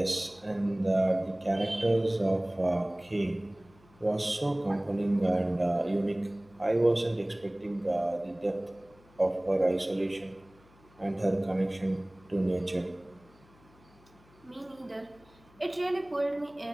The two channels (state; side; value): noise; left; hum, 28 dB below the sound